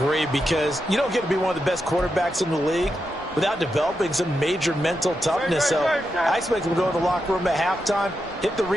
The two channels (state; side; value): normal; both; correlation 0.86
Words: because you don't get to be one of the best quarterbacks in the league without developing some major mental toughness. So I expect him to go in the locker room at halftime, hit the